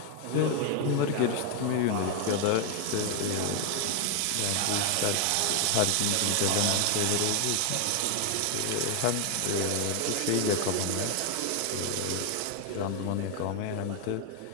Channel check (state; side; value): different; both; correlation 0.01